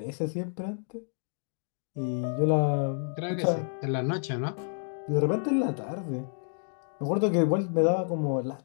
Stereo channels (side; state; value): right; silent; digital silence